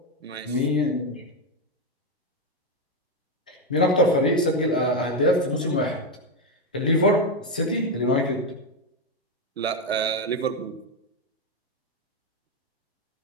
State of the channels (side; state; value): both; normal; correlation 0.08